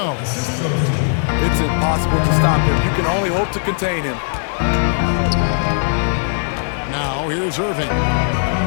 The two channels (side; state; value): right; silent; digital silence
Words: It's impossible to stop him. You can only hope to contain him. Now here's Irving.